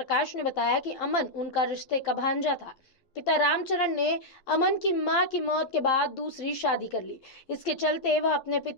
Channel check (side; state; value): right; late; 12 ms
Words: ने बताया कि अमन उनका रिश्ते का भांजा था। पिता रामचरण ने अमन की मां की मौत के बाद दूसरी शादी कर ली। इसके चलते वह अपने